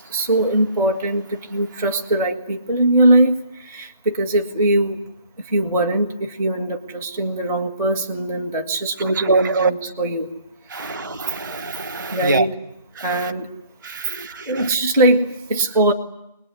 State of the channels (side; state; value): both; inverted; correlation -0.56